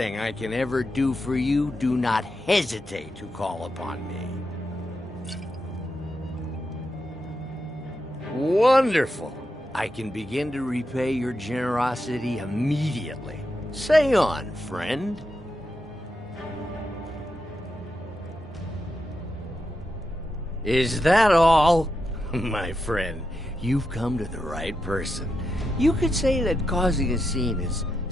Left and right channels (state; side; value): normal; both; correlation 0.86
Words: I can ever do for you, do not hesitate to call upon me. Wonderful. I can begin to repay your generosity immediately. Say on, friend. Is that all? My friend, you've come to the right person. You could say that causing a scene is